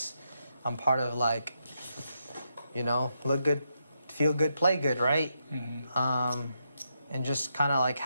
I'm part of like, you know, look good, feel good, play good, right? And just kind of like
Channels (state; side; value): inverted; both; correlation -0.81